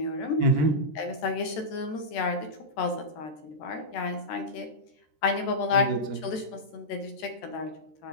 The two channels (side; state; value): right; late; 13 ms